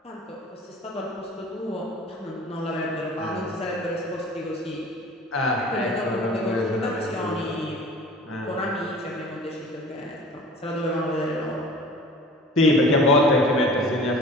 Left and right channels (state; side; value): normal; both; correlation 0.43